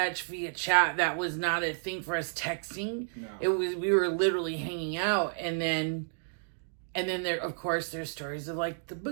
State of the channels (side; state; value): left; silent; digital silence